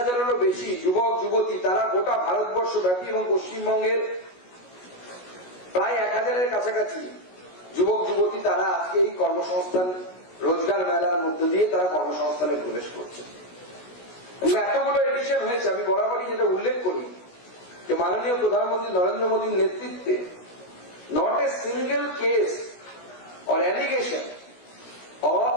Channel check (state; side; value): late; right; 16 ms